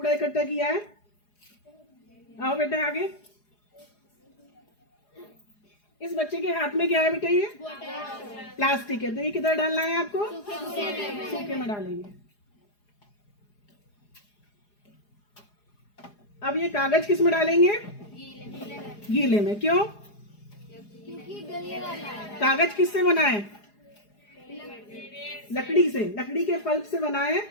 इकट्ठा किया है। आओ बेटा आगे। इस बच्चे के हाथ में क्या है बेटा? ये प्लास्टिक है। तो ये किधर डालना है आपको? सूखे में डालेंगे। अब ये कागज किस में डालेंगे? गीले में। क्यों? कागज किससे बना है? लकड़ी से, लकड़ी के पल्प से बना है,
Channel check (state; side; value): late; right; 4.8 ms